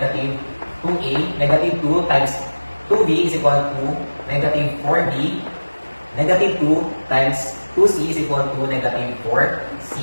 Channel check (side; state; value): both; inverted; correlation -1.00